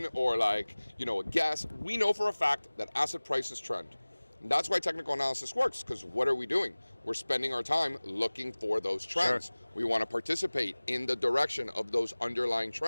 or like, a guess. We know for a fact that asset prices trend. And that's why technical analysis works, because what are we doing? We're spending our time looking for those trends. Sure. We want to participate in the direction of those underlying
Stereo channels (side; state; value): both; inverted; correlation -1.00